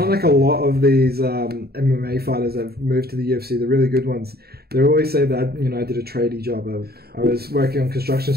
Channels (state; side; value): late; left; 0.46 ms